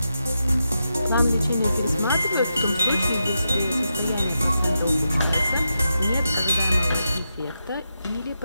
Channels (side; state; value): both; inverted; correlation -0.87